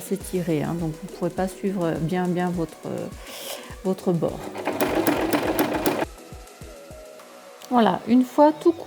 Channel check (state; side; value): identical; both; correlation 1.00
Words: donc vous ne pourrez pas suivre bien votre bord. Voilà, une fois tout